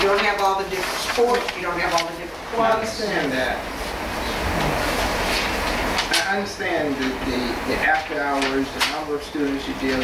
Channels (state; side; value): identical; both; correlation 1.00